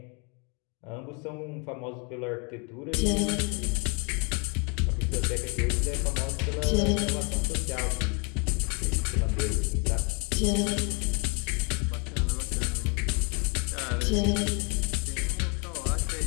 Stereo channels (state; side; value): quieter; right; 34.0 dB